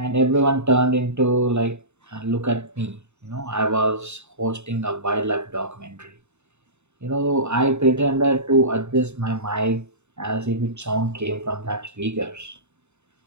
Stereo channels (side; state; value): left; late; 0.82 ms